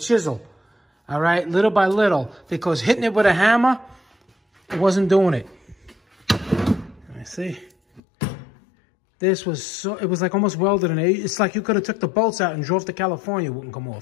All right, little by little. Because hitting it with a hammer, it wasn't doing it. Let me see. This was so, it was like almost welded in it. It's like you could have took the bolts out and drove to California, it wouldn't come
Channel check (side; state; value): right; drops out; at 8.0 s